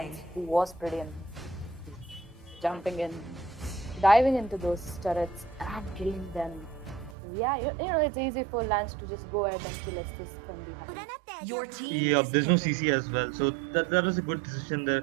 Lance, who was pretty jumping in, diving into those turrets and killing them. Yeah, it's easy for Lance to just go ahead and kill Estes from behind. Your team Yeah, is there's no picking. CC as well, so that was a good decision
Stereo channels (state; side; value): drops out; left; at 7.2 s